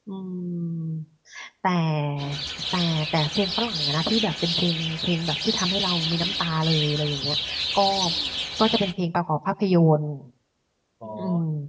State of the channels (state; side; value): identical; both; correlation 1.00